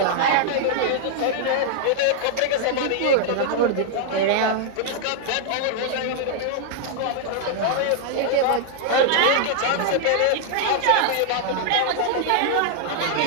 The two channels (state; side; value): different; both; correlation -0.01